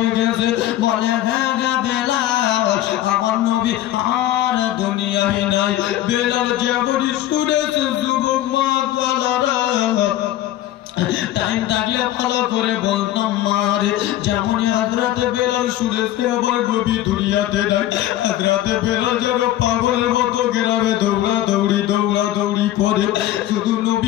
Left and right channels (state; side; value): quieter; right; 13.6 dB